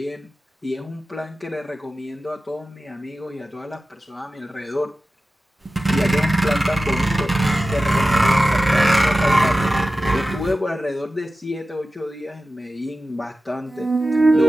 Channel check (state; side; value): normal; both; correlation 0.94